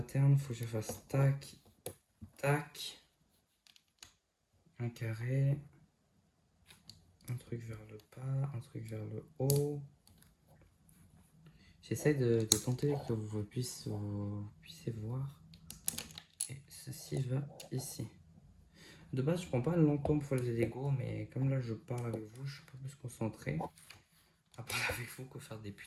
faut que je fasse tac, tac. Un carré. Un truc vers le bas, un truc vers le haut. J'essaie de tenter que vous puissiez voir. Et ceci va ici. De base, je prends pas longtemps pour faire les Lego, mais comme là je parle avec vous, je suis un peu plus concentré à parler avec vous que faire des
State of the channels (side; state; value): both; identical; correlation 1.00